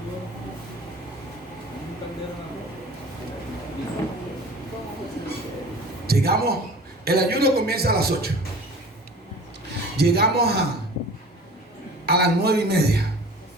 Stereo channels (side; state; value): both; normal; correlation 0.43